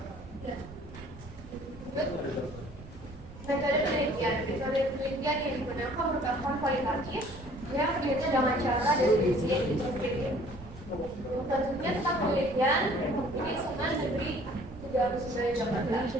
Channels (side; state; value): right; noise; rumble, 16 dB below the sound